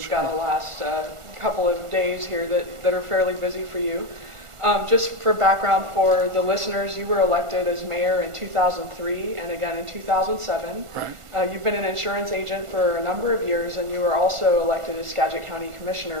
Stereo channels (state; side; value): late; left; 1.5 ms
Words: got a last couple of days here that are fairly busy for you. Just for background for the listeners, you were elected as mayor in 2003 and again in 2007. Right. You've been an insurance agent for a number of years, and you were also elected as Skagit County